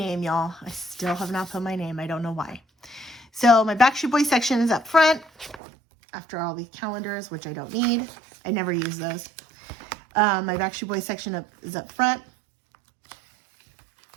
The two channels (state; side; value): drops out; left; at 5.6 s